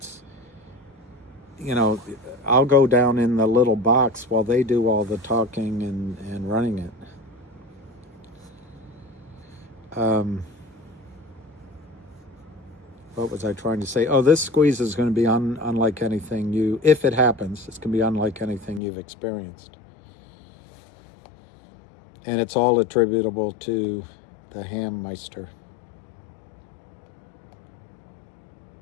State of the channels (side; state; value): right; drops out; at 18.8 s